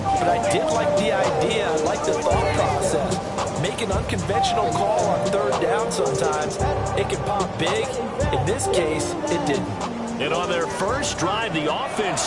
but I did like the idea big. In this case, it didn't. And on their first drive, the offense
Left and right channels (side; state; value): both; identical; correlation 1.00